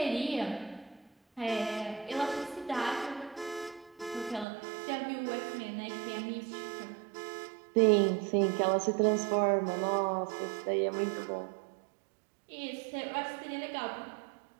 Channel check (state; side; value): drops out; left; at 4.5 s